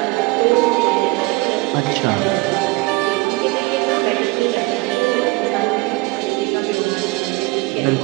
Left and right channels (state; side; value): quieter; left; 23.8 dB